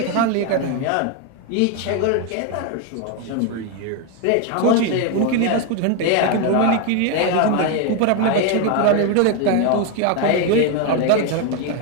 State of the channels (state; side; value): different; both; correlation 0.01